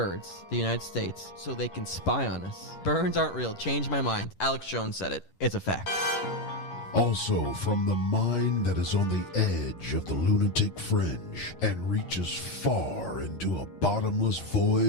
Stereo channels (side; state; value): right; late; 11 ms